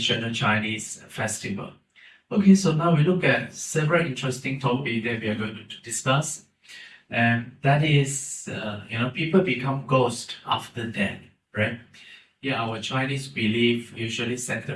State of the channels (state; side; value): identical; both; correlation 1.00